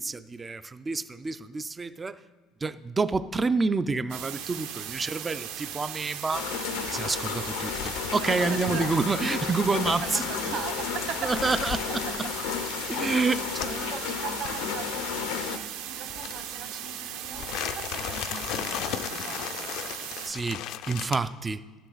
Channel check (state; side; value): normal; both; correlation 0.64